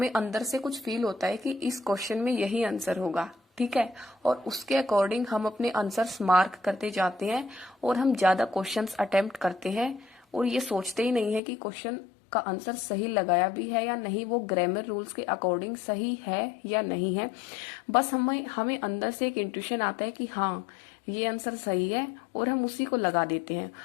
अंदर से कुछ फील होता है कि इस क्वेश्चन में यही आंसर होगा। ठीक है, और उसके अकॉर्डिंग हम अपने आंसर्स मार्क करते जाते हैं और हम ज्यादा क्वेश्चंस अटेम्प्ट करते हैं और ये सोचते ही नहीं है कि क्वेश्चन का आंसर सही लगाया भी है या नहीं, वो ग्रामर रूल्स के अकॉर्डिंग सही है या नहीं है। बस हमें अंदर से एक इंट्यूशन आता है कि हाँ ये आंसर सही है और हम उसी को लगा देते हैं,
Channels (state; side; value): drops out; right; at 11.4 s